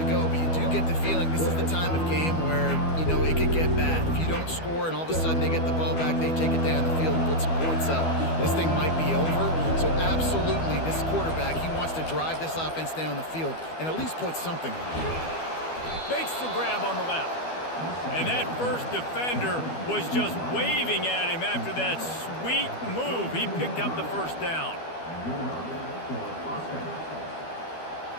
go, but you do get the feeling this is the time of game where, you know, it could get bad. If you don't score and all of a sudden they get the ball back, they take it down the field and put some points up, this thing might be over. So absolutely, this quarterback, he wants to drive this offense down the field and at least put something on it. Makes the grab on the left. And that first defender was just waving at him after that sweet move. He picked up the 1st down.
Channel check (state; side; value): late; right; 12 ms